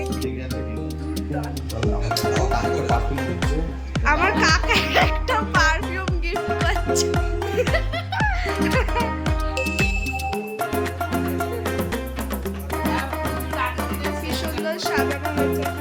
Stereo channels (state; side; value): identical; both; correlation 1.00